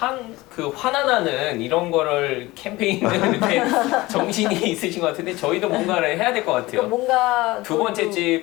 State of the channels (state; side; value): quieter; right; 20.0 dB